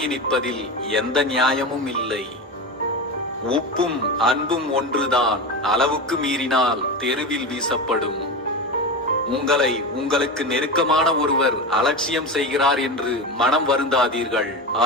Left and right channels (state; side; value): normal; both; correlation 0.23